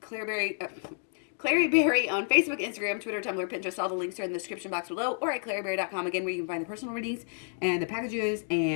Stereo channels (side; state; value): right; silent; 58 dB below the other